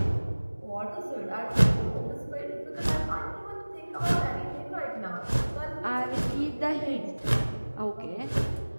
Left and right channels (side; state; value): both; inverted; correlation -1.00